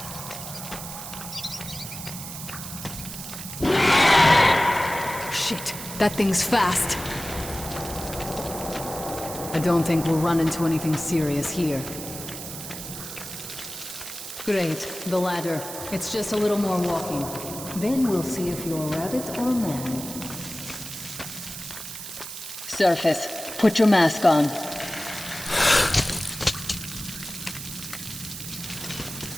Shit, that thing's fast. I don't think we'll run into anything serious here. Great, the ladder. It's just a little more walking. Then we'll see if you're rabbit or man. Surface, put your mask on.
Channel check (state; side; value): noise; right; hiss, 9 dB below the sound